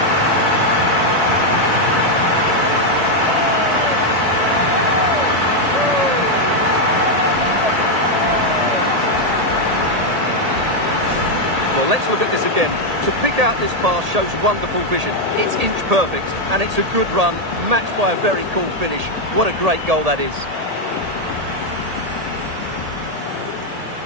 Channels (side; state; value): left; late; 1.8 ms